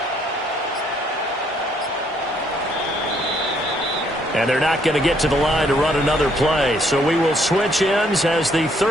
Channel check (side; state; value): both; normal; correlation 0.68